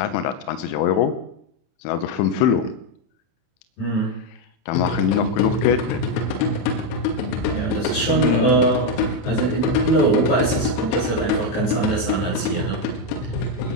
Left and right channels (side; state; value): right; late; 31 ms